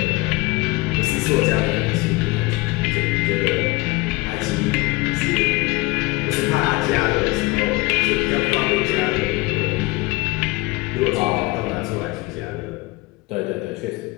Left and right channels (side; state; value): right; quieter; 22.6 dB